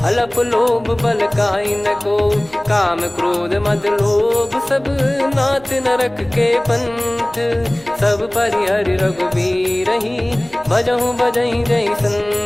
अलप लोभ बल काई न को। काम क्रोध मद लोभ सब नाथ नरक के पंथ। सब परिहरि रघुबीर ही भजहु भजहि जय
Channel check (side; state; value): right; noise; hum, 26 dB below the sound